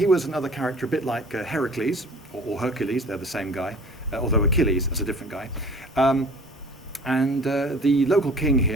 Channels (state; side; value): normal; both; correlation 0.47